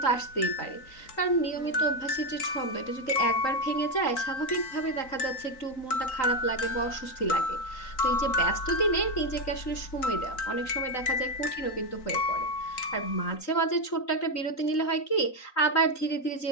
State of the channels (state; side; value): late; right; 3.9 ms